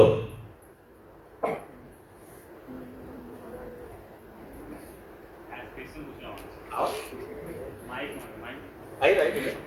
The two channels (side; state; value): both; identical; correlation 1.00